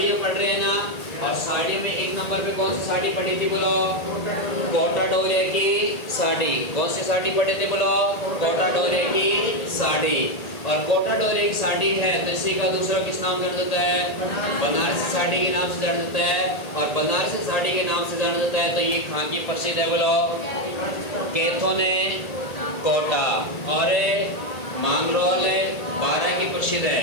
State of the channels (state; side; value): late; right; 1.8 ms